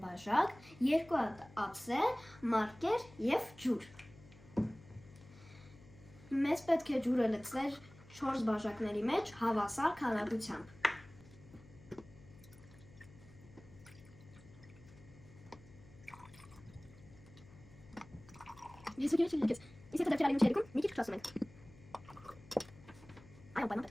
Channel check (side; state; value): left; noise; hum, 22 dB below the sound